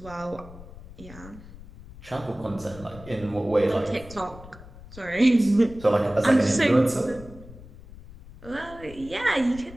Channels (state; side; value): noise; left; rumble, 17 dB below the sound